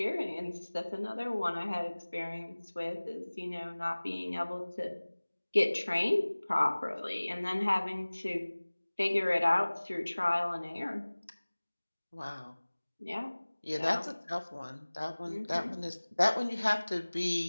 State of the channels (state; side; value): inverted; both; correlation -1.00